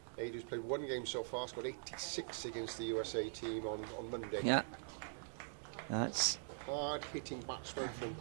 Adrian's played one game so far, scored 86 against the USA team on Monday. yeah, that's Hard-hitting batsman from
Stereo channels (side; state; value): left; silent; digital silence